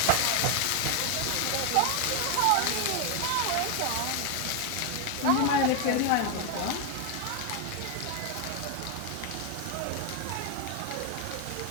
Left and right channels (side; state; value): both; different; correlation 0.01